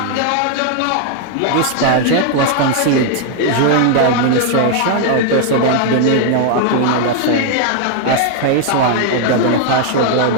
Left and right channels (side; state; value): both; different; correlation 0.00